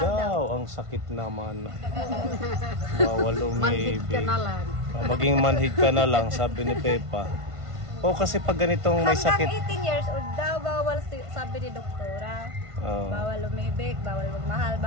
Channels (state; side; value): late; left; 1.5 ms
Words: daw. Ang sakit naman. Bawal umibig. Manhid ka na lang. Maging manhid ka na lang, sabi ni Pepa. Kasi pag ganitong may sakit. Hanggang 18 years old daw, bawal sabi ni doktora. Bawal umibig, bawal magmahal,